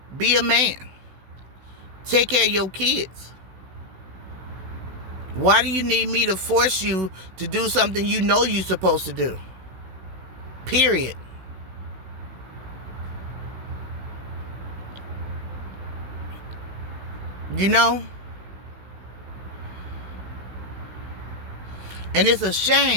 Be a man. Take care of your kids. Why do you need me to force you to do something you know you're supposed to do? Period. You know? And it's a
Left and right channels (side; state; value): left; late; 16 ms